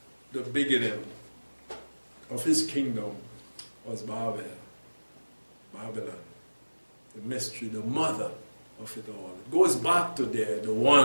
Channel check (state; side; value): inverted; both; correlation -1.00